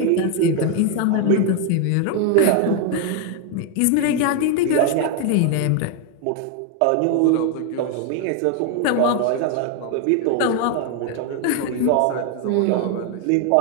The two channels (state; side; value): different; both; correlation 0.01